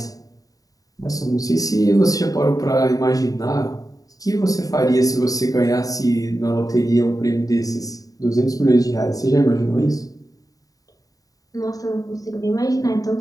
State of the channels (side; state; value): right; late; 0.17 ms